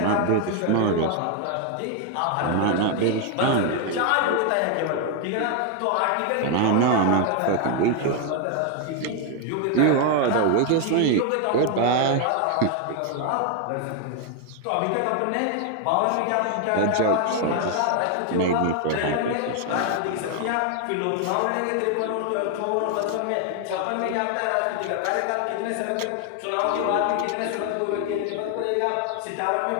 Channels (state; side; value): different; both; correlation 0.01